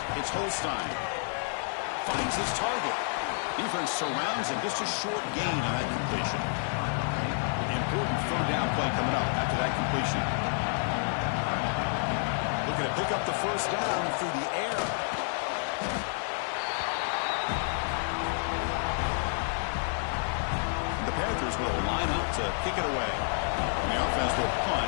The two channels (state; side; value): silent; right; 58 dB below the other